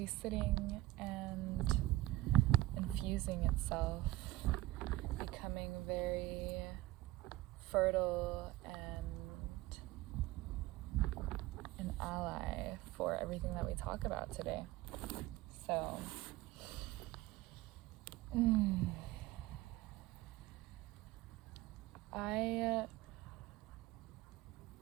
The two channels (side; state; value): left; quieter; 17.3 dB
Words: sitting and infusing itself, becoming very fertile and an ally for everything that we talk about today. So, I